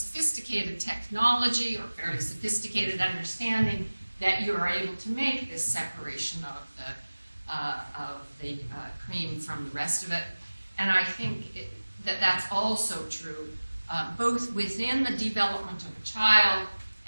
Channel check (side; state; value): both; inverted; correlation -1.00